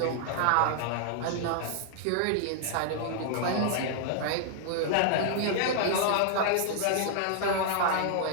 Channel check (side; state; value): both; different; correlation -0.01